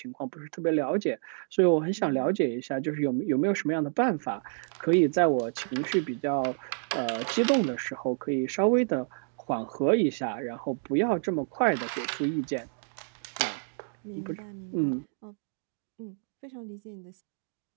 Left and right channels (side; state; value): left; silent; 58 dB below the other